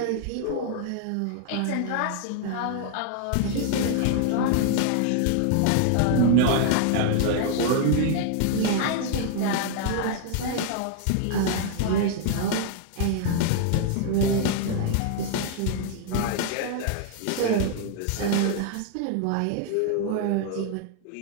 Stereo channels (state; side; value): different; both; correlation -0.01